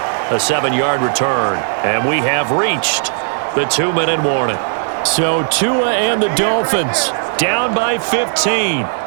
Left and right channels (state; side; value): silent; left; digital silence